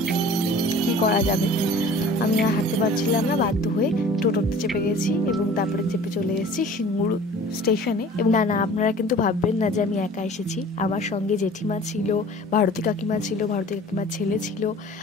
কী করা যাবে, আমি আর হাঁটতে পারছিলাম না, বাধ্য হয়ে টোটোতে চেপে গেছি, এবং তারপরে চেপে চলে এসেছি সিঙ্গুর স্টেশনে। এবং না, আপনারা কিন্তু ভাববেন না যে আমি একা এসেছি, আমার সঙ্গে জেঠিমা ছিল, ভারতী কাকিমা ছিল, ভারতী কাকিমার ছেলে ছিল।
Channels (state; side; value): normal; both; correlation 0.46